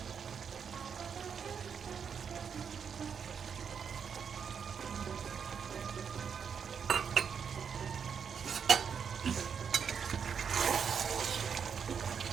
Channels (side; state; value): left; quieter; 6.9 dB